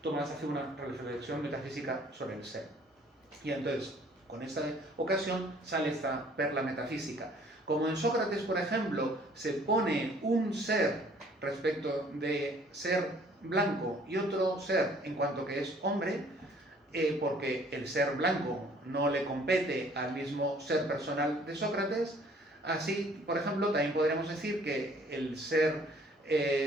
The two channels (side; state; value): both; normal; correlation 0.57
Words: Tomás hace una reflexión metafísica sobre el ser. Y entonces, con esta ocasión, sale esta perla metafísica. Como en Sócrates, por ejemplo, se pone un ser respecto de ser blanco y otro ser en cuanto que es hombre, porque el ser blanco no le compete al mismo ser personal de Sócrates. Así, por ejemplo, también podríamos decir que el ser